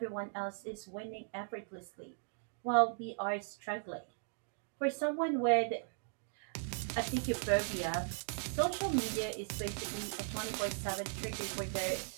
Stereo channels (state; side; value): silent; left; digital silence